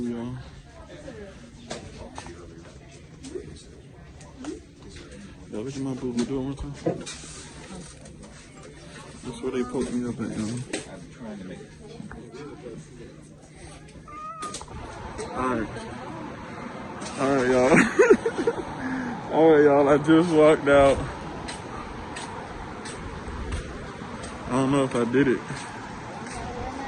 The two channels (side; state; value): both; identical; correlation 1.00